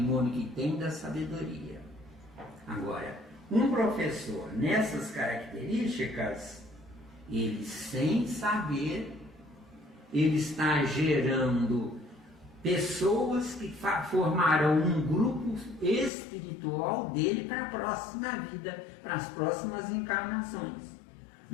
que tem da sabedoria. Agora, um professor nessas características, ele sem saber, ele está gerando pessoas que formarão um grupo espiritual dele para a próxima vida, para as próximas encarnações.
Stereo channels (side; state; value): right; drops out; at 16.1 s